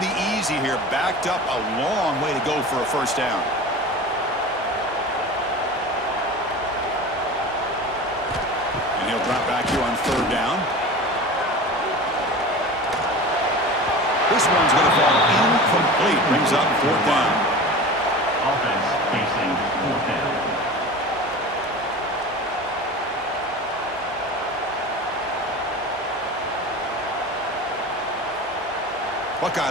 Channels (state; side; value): normal; both; correlation 0.34